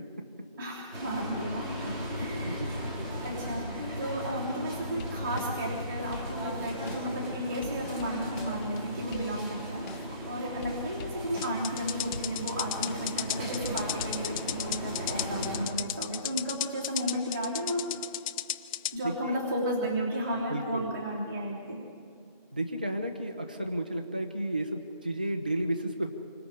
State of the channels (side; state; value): both; inverted; correlation -0.54